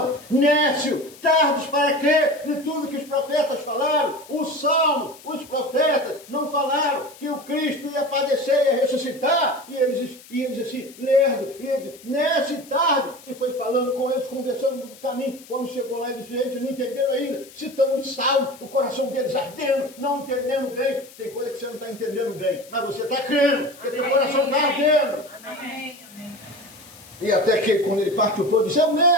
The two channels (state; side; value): noise; left; hiss, 21 dB below the sound